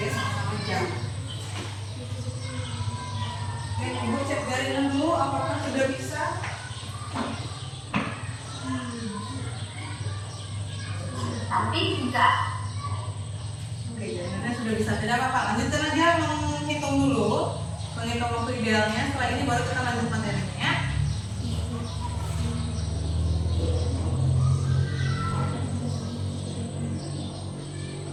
sama-sama jam. Oke, ibu cek jaringan dulu apakah sudah bisa. Tapi tidak. Oke, jaringannya sudah bisa, tidak apa-apa. Lanjutkan aja menghitung dulu, menghitung waktu idealnya. Setelah ini baru kita lanjut materinya ya.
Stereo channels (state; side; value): identical; both; correlation 1.00